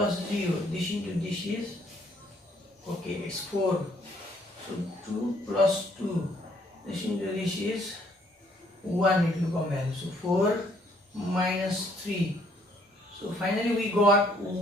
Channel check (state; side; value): normal; both; correlation 0.65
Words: 0. This into this is, okay, it's 4. So 2 plus 2. This into this is 1. It will come value. So 4 minus 3. So finally we got